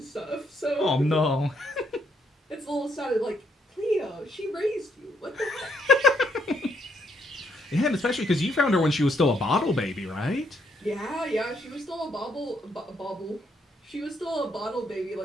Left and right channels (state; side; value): normal; both; correlation 0.73